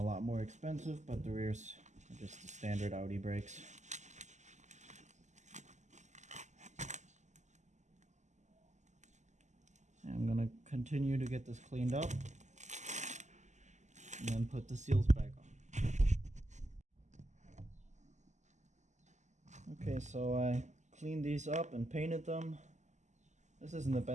lot more expensive, but the rears are just the standard Audi brakes. And I'm gonna continue to get this cleaned up and then put the seals back on. Okay, so I cleaned these up and painted them. This isn't the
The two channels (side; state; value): left; late; 0.34 ms